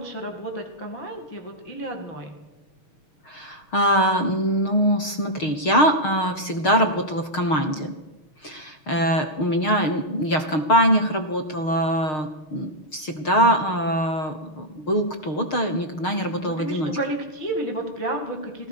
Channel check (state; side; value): late; right; 6.5 ms